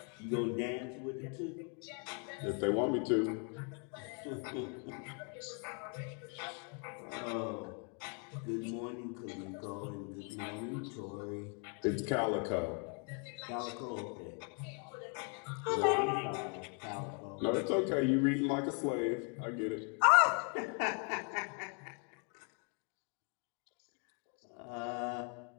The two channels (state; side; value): quieter; right; 38.6 dB